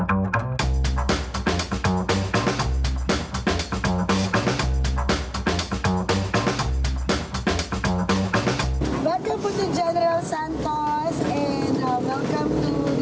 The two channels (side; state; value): both; identical; correlation 1.00